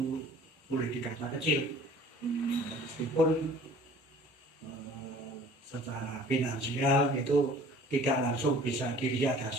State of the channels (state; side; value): normal; both; correlation 0.49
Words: boleh dikata kecil, meskipun secara finansial itu tidak langsung bisa dilihat